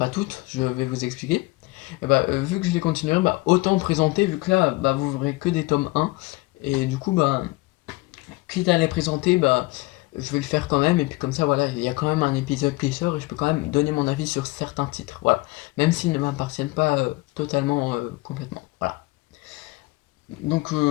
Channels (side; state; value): right; quieter; 22.0 dB